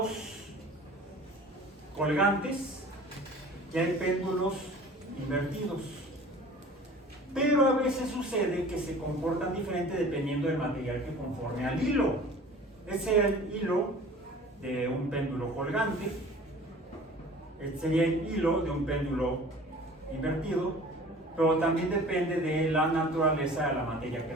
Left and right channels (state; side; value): normal; both; correlation 0.44